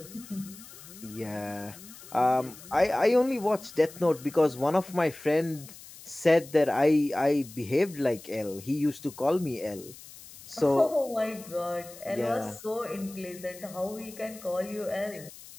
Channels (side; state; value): left; noise; hiss, 18 dB below the sound